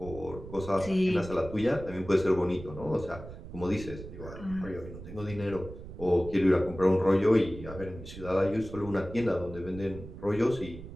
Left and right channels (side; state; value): right; noise; rumble, 13 dB below the sound